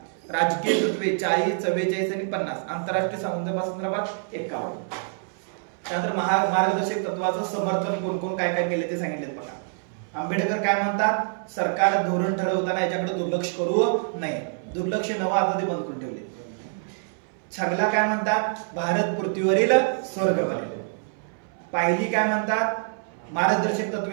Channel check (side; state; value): left; silent; 61 dB below the other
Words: राजकीय तत्वे 40, 44 आणि 50. आंतरराष्ट्रीय संदर्भात 51. त्यानंतर मार्गदर्शक तत्वाचं समर्थन कोण कोण काय काय केले ते सांगितले बघा. आंबेडकर काय म्हणतात? सरकार धोरण ठरवताना याच्याकडे दुर्लक्ष करू नये. दुर्लक्ष नवं आता ते बंद करून ठेवले. छगला काय म्हणतात? भारत पृथ्वीवरील स्वर्ग बनेल. पाहिली काय म्हणतात? मार्गदर्शक